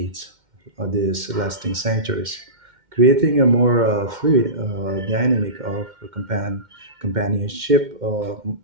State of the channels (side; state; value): left; late; 2.1 ms